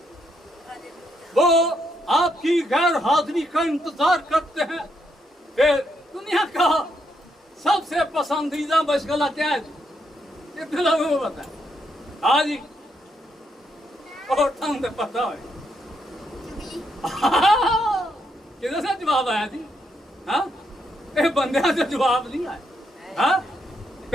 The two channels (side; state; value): both; normal; correlation 0.77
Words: वो आपकी गैर हाजिरी का इंतजार करते हैं। फिर दुनिया का सबसे पसंदीदा मशगला क्या है? कितने लोगों को पता है? हाँ जी, और तो पता है। किधर से जवाब आया जी? हाँ, बंदे से जवाब नहीं आया। हाँ,